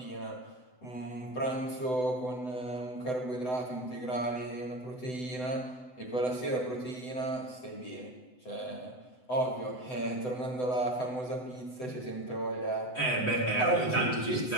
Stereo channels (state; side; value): late; right; 7.9 ms